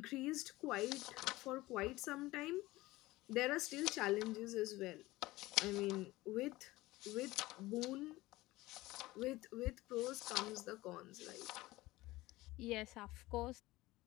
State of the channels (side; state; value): right; quieter; 18.9 dB